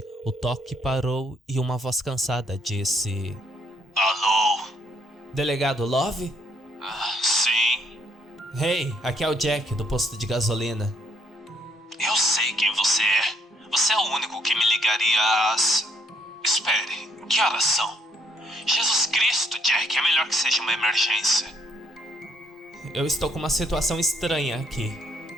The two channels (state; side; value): normal; both; correlation 0.69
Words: o toque parou e uma voz cansada disse: Alô? Delegado Love? Sim. Hey, aqui é o Jack, do posto de gasolina. Eu sei quem você é. Você é o único que me ligaria às... Espere, que horas são? Jesus Cristo, Jack, é melhor que seja uma emergência. Eu estou com uma situação estranha aqui.